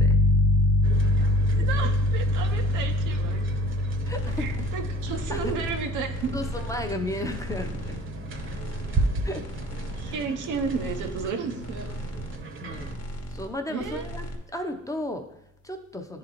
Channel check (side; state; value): both; normal; correlation 0.48